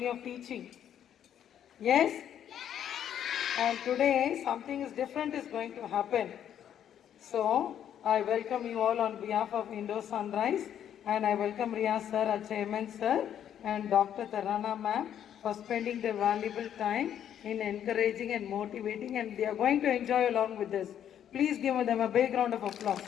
of teaching. Yes? And today something is different is going to happen. So I welcome you all on behalf of Indo Sunrise and I welcome Riyaz sir, our chairman sir and Dr. Tarana ma'am for spending their valuable time in encouraging and motivating, and they are going to enjoy along with us. Please give them a big round of applause.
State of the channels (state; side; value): quieter; right; 9.8 dB